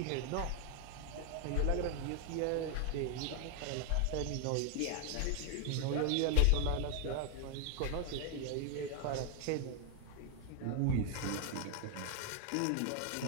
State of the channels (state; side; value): different; both; correlation 0.00